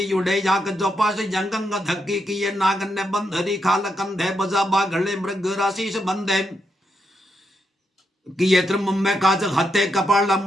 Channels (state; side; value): normal; both; correlation 0.82